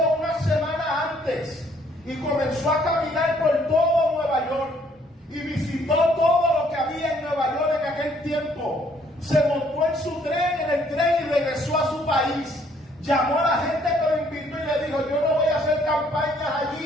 una semana antes y comenzó a caminar por todo Nueva York y visitó todo lo que había en Nueva York en aquel tiempo. Se montó en su tren, en el tren, y regresó a su país. Llamó a la gente que lo invitó y le dijo, yo no voy a hacer campañas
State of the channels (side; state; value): both; normal; correlation 0.64